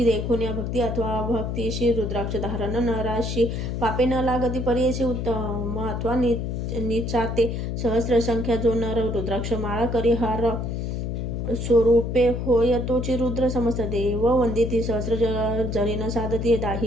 देखून या भक्ती अथवा भक्तीशी रुद्राक्ष धारण नराशी पापे न लागती परीशी उत्तम अथवा निचाते सहस्र संख्या जो नर रुद्राक्ष माळा करी हार स्वरूपे होय तोची रुद्र समस्त देव वंदिती सहस्र जरीन साधती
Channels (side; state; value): left; noise; hum, 3 dB below the sound